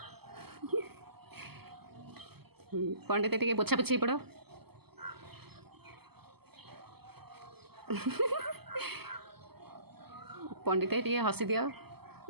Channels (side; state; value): left; late; 0.96 ms